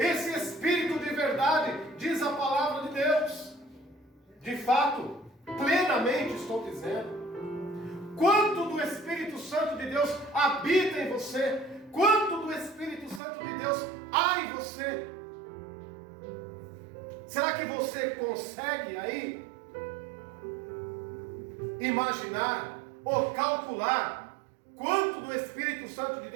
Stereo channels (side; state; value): left; drops out; at 13.2 s